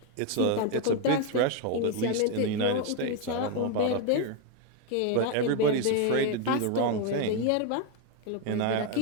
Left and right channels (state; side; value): different; both; correlation 0.01